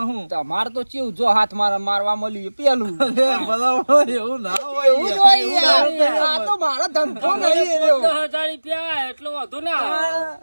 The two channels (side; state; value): both; inverted; correlation -1.00